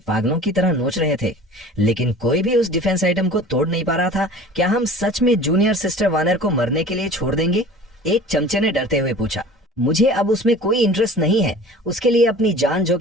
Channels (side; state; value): both; normal; correlation 0.42